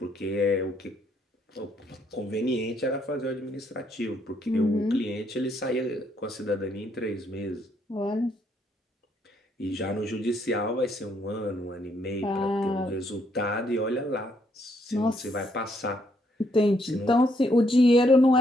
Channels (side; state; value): both; normal; correlation 0.72